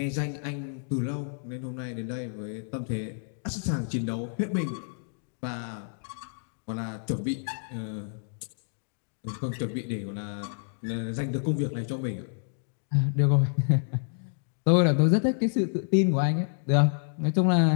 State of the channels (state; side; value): silent; right; digital silence